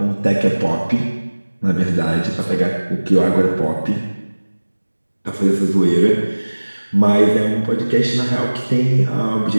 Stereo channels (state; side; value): inverted; both; correlation -1.00